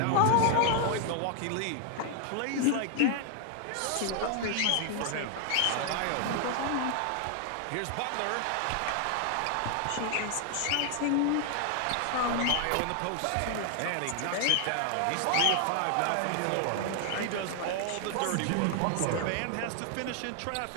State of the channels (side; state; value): both; different; correlation 0.00